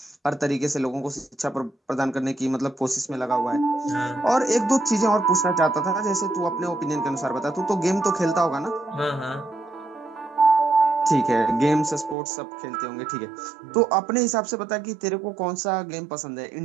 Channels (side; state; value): left; drops out; at 12.2 s